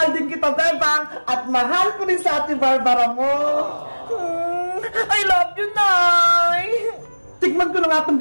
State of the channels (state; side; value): inverted; both; correlation -1.00